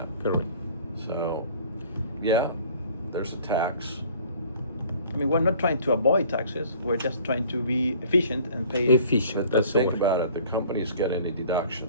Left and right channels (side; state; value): both; inverted; correlation -0.51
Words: correct. So, yeah, there's a tax. I mean, we're not trying to avoid taxes. We're just trying to be efficient and pay. Efficient, But that's the think word. about it, the company's getting a deduction,